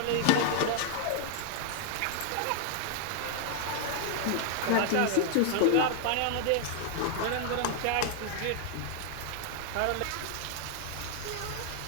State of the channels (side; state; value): both; different; correlation 0.00